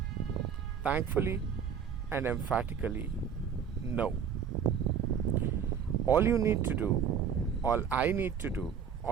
Thankfully and emphatically, no. All you need to do, all I need to do,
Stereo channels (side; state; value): left; quieter; 7.6 dB